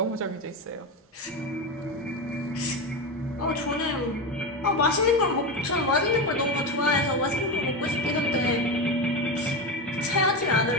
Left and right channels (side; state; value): both; normal; correlation 0.18